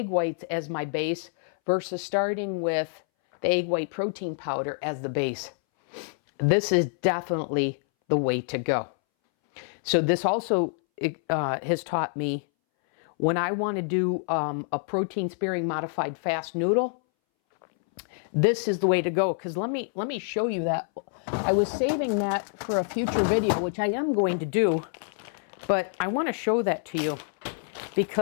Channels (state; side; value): silent; right; 60 dB below the other